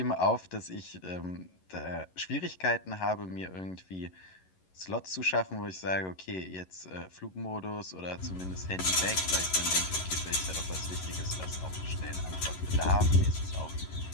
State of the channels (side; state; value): right; late; 11 ms